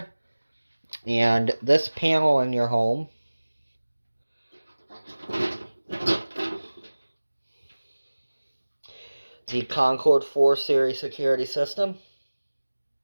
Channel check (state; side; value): inverted; both; correlation -1.00